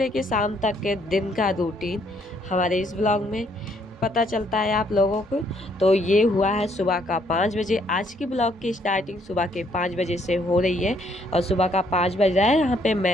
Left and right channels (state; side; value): normal; both; correlation 0.68